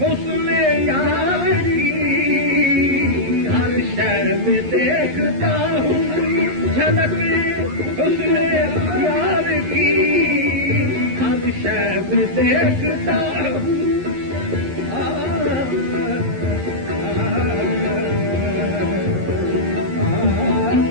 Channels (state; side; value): late; left; 11 ms